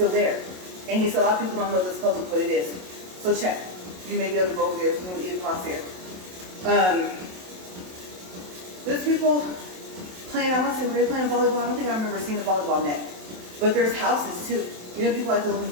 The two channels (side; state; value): left; late; 27 ms